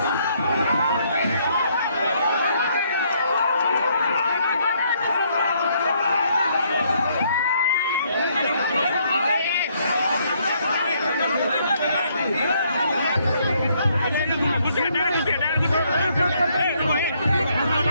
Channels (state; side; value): inverted; both; correlation -0.70